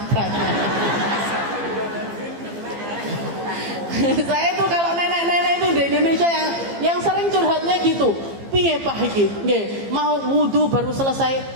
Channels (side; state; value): left; late; 15 ms